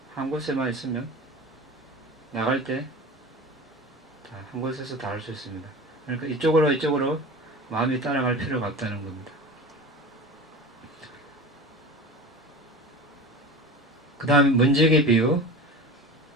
한 곳에만 있으면 나갈 때 한 곳에서 다 할 수 있습니다. 그러니까 이쪽으로 마음이 따라갈 필요가 없다는 겁니다. 그 다음 문지기 비유.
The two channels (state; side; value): normal; both; correlation 0.33